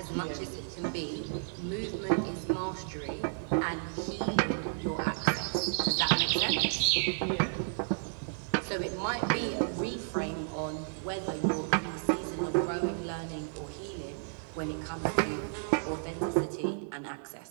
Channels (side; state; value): left; silent; 56 dB below the other